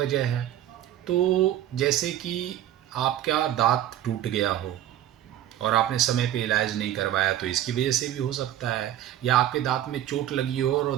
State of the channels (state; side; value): quieter; left; 12.1 dB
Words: है। तो जैसे कि आपका दांत टूट गया हो और आपने समय पे इलाज नहीं करवाया, तो इसकी वजह से भी हो सकता है। या आपके दांत में चोट लगी हो और